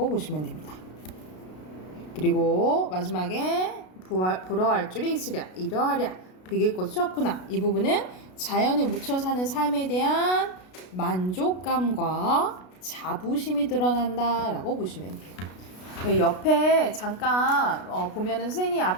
보시면 됩니다. 그리고 마지막에 부러워할 줄이 있으랴, 이러하랴, 비길 것이 없구나. 이 부분은 자연에 묻혀 사는 삶에 대한 만족감과 자부심이 드러난다라고 보시면 돼요. 옆에 잠깐 보면은 선생님이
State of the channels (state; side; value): late; right; 33 ms